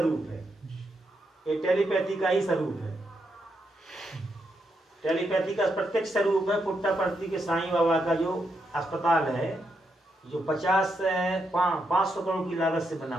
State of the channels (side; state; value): both; normal; correlation 0.81